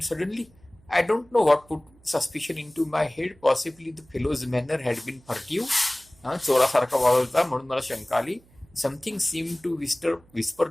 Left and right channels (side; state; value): right; noise; hum, 29 dB below the sound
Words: suddenly, I don't know what put suspicion into my head. Possibly the fellow's manner had been furtive. चोरासारखा वावरता म्हणून मला शंका आली. Something seemed to whisper